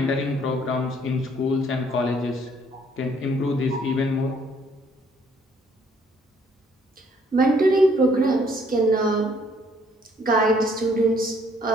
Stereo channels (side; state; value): both; normal; correlation 0.64